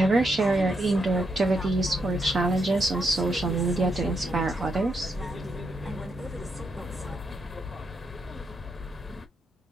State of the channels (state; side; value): normal; both; correlation 0.80